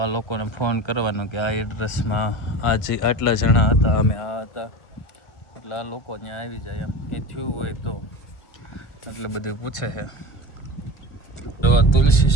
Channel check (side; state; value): right; late; 1.5 ms